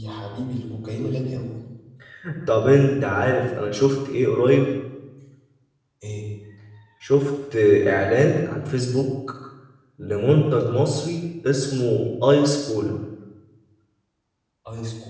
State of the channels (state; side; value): identical; both; correlation 1.00